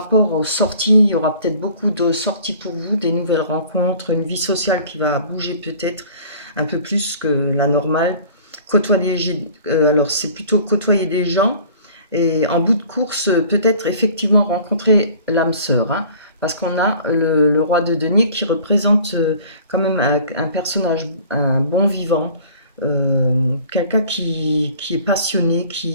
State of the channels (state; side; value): inverted; both; correlation -0.49